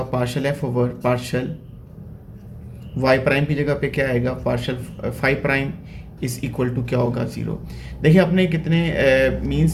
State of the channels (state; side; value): identical; both; correlation 1.00